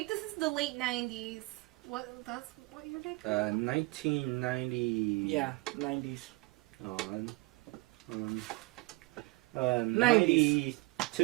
this is the late '90s. That's what year did? 1990. Yeah, 90s.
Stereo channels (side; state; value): left; quieter; 24.2 dB